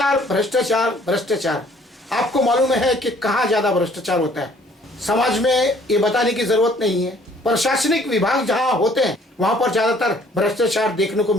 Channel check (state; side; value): normal; both; correlation 0.58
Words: भ्रष्टाचार भ्रष्टाचार, आपको मालूम है कि कहाँ ज्यादा भ्रष्टाचार होता है। समाज में ये बताने की जरूरत नहीं है। प्रशासनिक विभाग जहाँ होते हैं वहां पर ज्यादातर भ्रष्टाचार देखने को